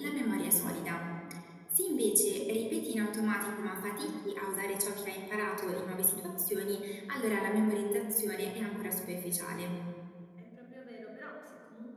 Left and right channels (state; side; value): identical; both; correlation 1.00